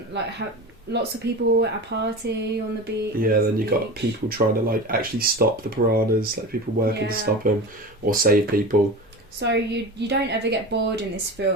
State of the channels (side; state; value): both; normal; correlation 0.30